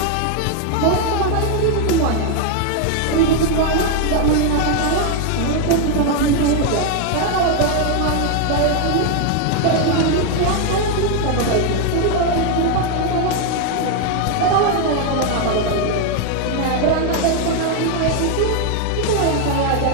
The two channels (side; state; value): both; different; correlation 0.01